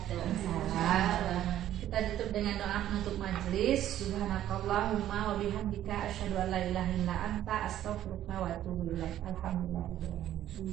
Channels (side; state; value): left; quieter; 12.2 dB